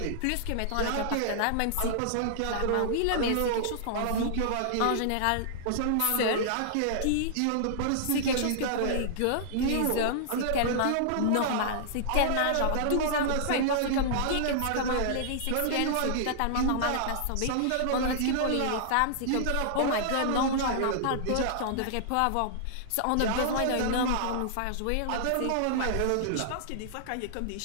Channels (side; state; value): both; different; correlation -0.01